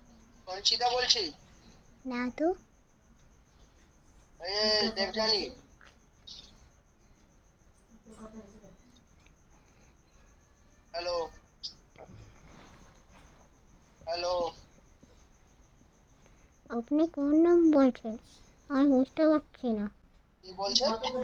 সঞ্চিতা বলছি। না তো। এই দেবযানী। হ্যালো, হ্যালো, আপনি কোন নাম বলছেন? আমি বুঝতে পারছি না। কি বলছেন?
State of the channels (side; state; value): both; identical; correlation 1.00